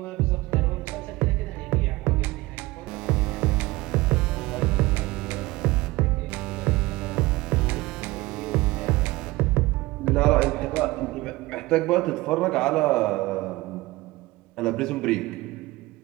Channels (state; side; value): quieter; left; 20.5 dB